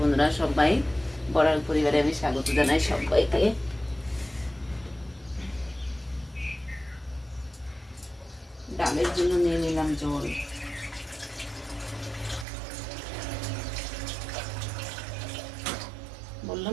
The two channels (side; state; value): left; drops out; at 12.5 s